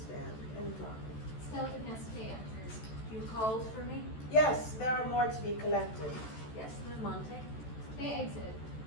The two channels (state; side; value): late; right; 14 ms